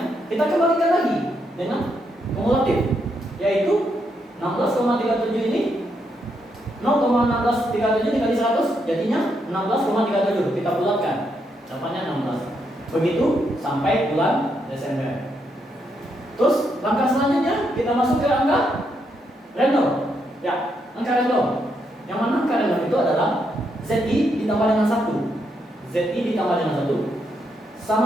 kita kembalikan lagi dengan kumulatif, yaitu 16,37 ini 0,1637 dikali 100 jadinya 16,37. Kita bulatkan, dapatnya 16. Begitu sampai bulan Desember. Terus langkah selanjutnya kita masuk ke angka random. Ya, angka random. Yang mana angka random itu adalah ZI ditambah dengan 1. ZI ditambah dengan 1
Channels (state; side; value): normal; both; correlation 0.78